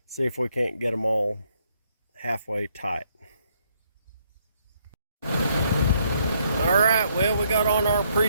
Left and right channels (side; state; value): both; inverted; correlation -0.71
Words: see if we can't get them all halfway tight. Alright, well, we got on our